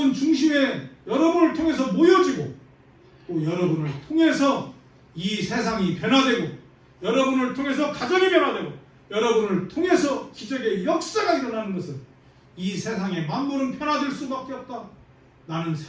중심에 여러분을 통해서 모여지고, 또 여러분을 통해서 이 세상이 변화되고 여러분을 통해서 가정이 변화되고 여러분을 통해서 기적의 역사가 일어나는 것은 이 세상의 만물은 변화될 수밖에 없다. 나는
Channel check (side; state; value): both; identical; correlation 1.00